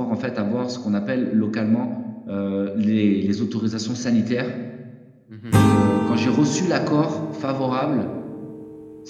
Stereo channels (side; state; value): both; identical; correlation 1.00